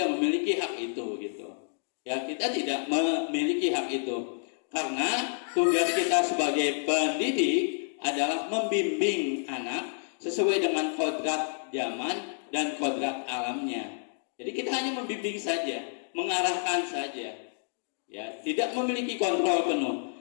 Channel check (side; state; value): right; silent; digital silence